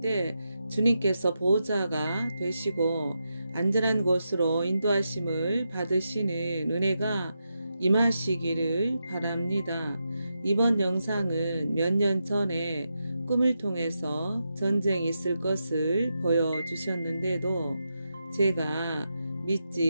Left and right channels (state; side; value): inverted; both; correlation -0.87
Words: 때 주님께서 보호자가 되시고 안전한 곳으로 인도하심을 받으시는 은혜가 임하시기를 바랍니다. 이번 영상은 몇 년 전에 꿈을 통해서 전쟁이 있을 것을 보여주셨는데도 제가